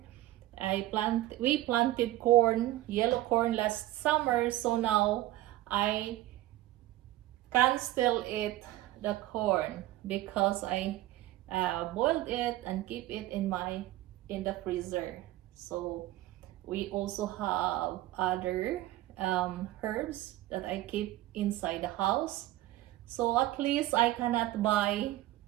We planted corn, yellow corn last summer, so now I can still eat the corn because I boiled it and keep it in the freezer. So we also have other herbs that I keep inside the house. So at least I cannot buy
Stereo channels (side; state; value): left; quieter; 15.8 dB